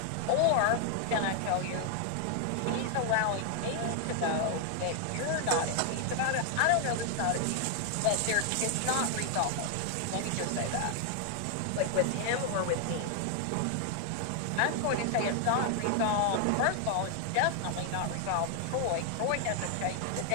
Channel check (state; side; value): different; both; correlation 0.00